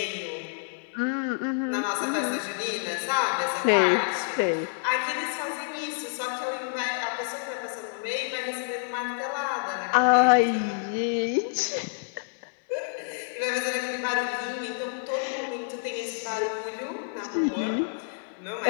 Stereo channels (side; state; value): right; silent; 57 dB below the other